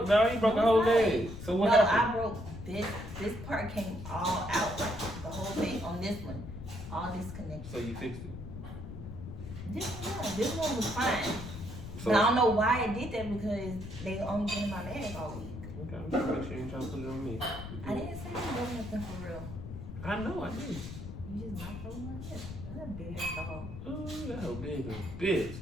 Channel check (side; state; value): left; noise; rumble, 10 dB below the sound